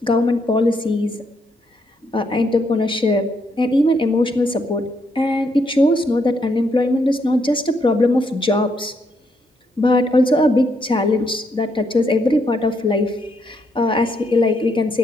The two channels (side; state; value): both; normal; correlation 0.76